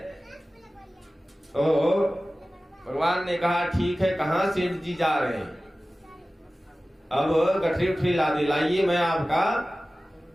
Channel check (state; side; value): normal; both; correlation 0.96